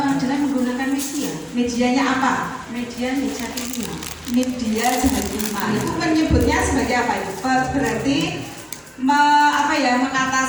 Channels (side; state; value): both; identical; correlation 1.00